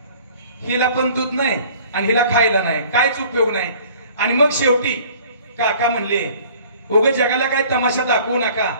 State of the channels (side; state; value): both; inverted; correlation -0.51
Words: हिला पण दूध नाही आणि हिला खायला नाही, कायच उपयोग नाही. आणि मग शेवटी काका म्हणले, उगाच जगाला काय तमाशा दाखवू नका,